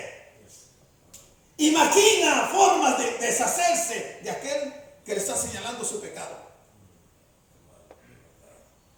y maquina formas de deshacerse de aquel que le está señalando su pecado.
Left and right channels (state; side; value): identical; both; correlation 1.00